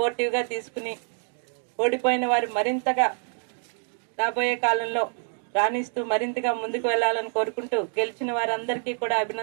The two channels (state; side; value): silent; left; 61 dB below the other